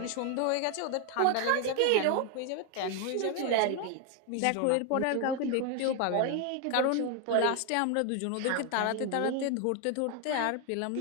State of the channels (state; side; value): different; both; correlation 0.01